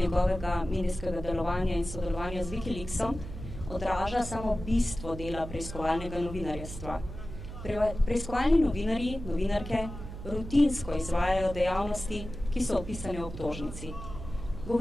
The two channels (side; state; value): right; noise; hum, 10 dB below the sound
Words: medijskega delovanja in sodelovanja z Wikileaksom, odraža samo bistvo dela preiskovalnega novinarjestva. Preiskovalni novinarji, novinarke, rutinsko izvajajo dejavnosti, ki so opisane v obtožnici.